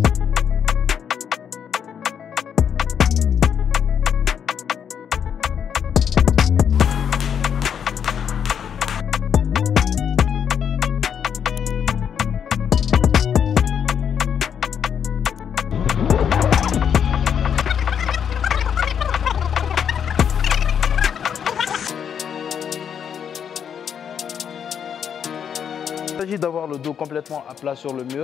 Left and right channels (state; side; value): quieter; right; 8.0 dB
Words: Il s'agit d'avoir le dos complètement à plat sur le